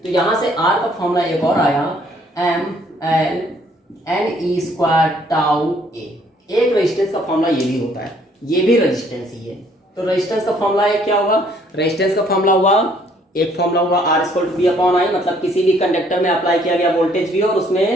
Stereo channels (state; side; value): normal; both; correlation 0.63